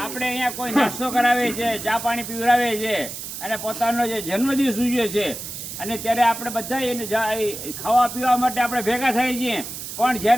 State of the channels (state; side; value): noise; right; hiss, 9 dB below the sound